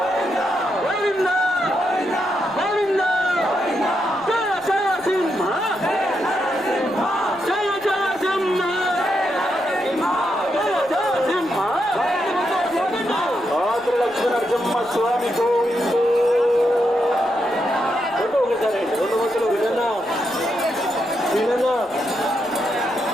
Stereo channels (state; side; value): noise; left; rumble, 30 dB below the sound